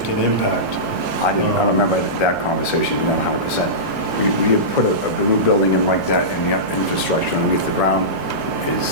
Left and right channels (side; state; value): left; noise; hum, 19 dB below the sound